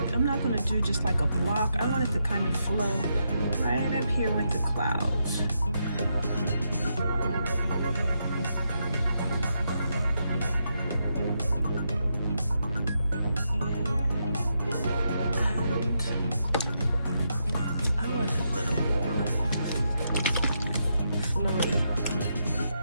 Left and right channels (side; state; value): both; inverted; correlation -0.82